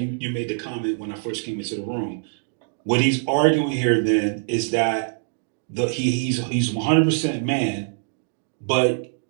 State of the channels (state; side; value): silent; left; digital silence